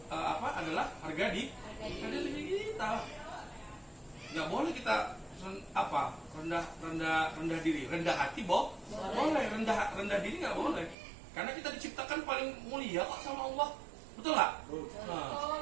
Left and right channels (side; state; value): left; drops out; at 11.0 s